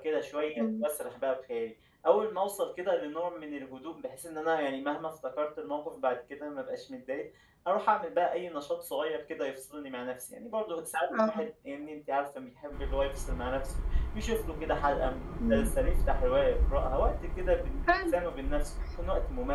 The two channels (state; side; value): identical; both; correlation 1.00